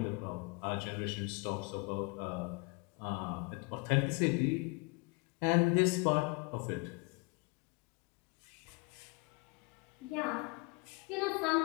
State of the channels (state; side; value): quieter; right; 30.3 dB